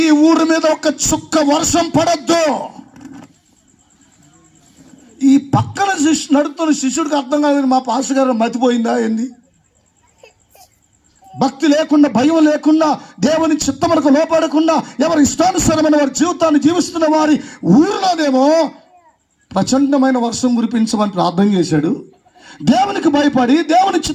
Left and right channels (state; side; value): identical; both; correlation 1.00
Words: ఈ ఊరి మీద ఒక చుక్క వర్షం పడద్దు. ఈ పక్కన నడుతున్న శిష్యుడికి అర్థం కాలేదు, మా పాస్టర్ గారు మతిపోయిందా ఏంది? భక్తి లేకుండా, భయం లేకుండా, దేవుని చిత్తములకు లోపడకుండా ఎవరి ఇష్టానుసారమైన వారి జీవితాన్ని జీవిస్తున్న వారి ఊరిలోనేమో ప్రచండమైన వర్షం కురిపించమని ప్రార్థన చేశాడు. దేవునికి భయపడి దేవుని